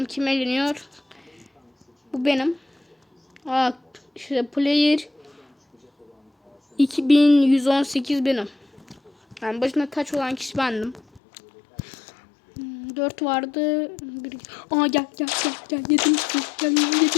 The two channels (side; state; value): right; drops out; at 11.2 s